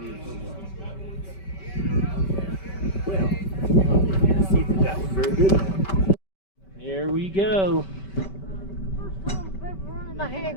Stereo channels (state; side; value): late; right; 5.2 ms